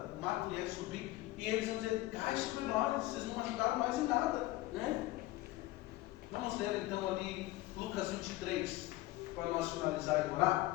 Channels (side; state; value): right; quieter; 17.7 dB